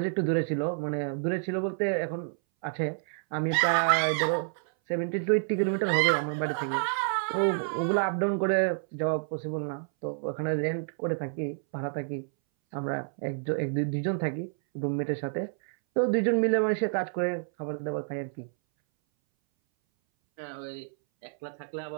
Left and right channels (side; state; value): left; silent; 59 dB below the other